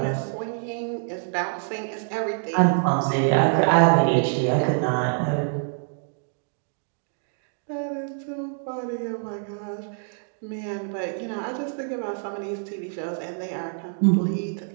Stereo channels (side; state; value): left; silent; 61 dB below the other